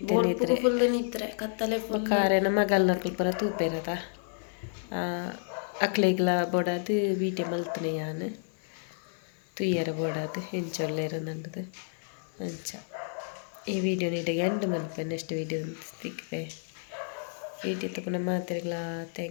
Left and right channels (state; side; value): silent; right; 58 dB below the other